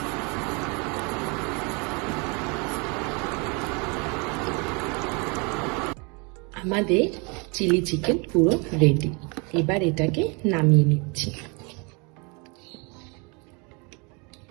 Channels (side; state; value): left; quieter; 31.2 dB